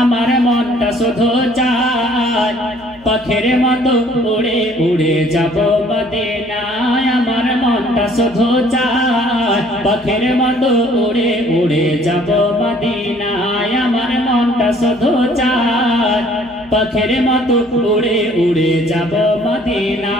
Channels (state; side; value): noise; right; hum, 27 dB below the sound